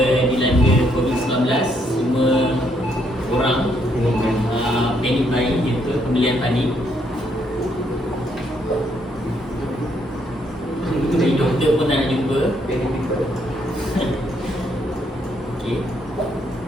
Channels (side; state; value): both; normal; correlation 0.73